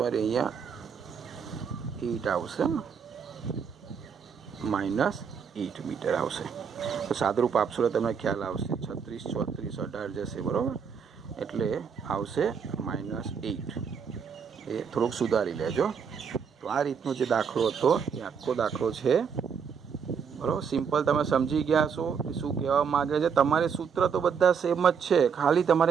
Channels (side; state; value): left; quieter; 6.6 dB